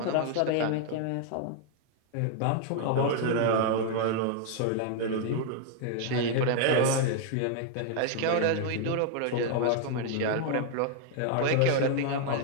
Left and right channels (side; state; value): both; different; correlation 0.00